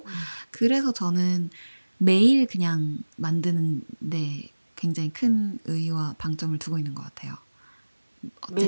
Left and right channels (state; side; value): inverted; both; correlation -1.00